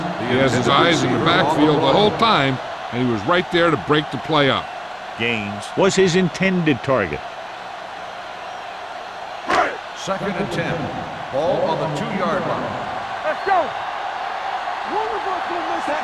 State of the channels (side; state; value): both; identical; correlation 1.00